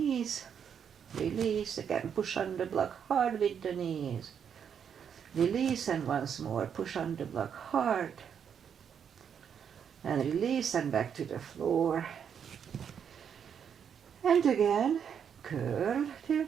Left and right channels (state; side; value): quieter; left; 7.8 dB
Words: Release. Again, push on the block hard with the knees. Release, and once more, push on the block hard. And release, and back to the floor. And again, curl,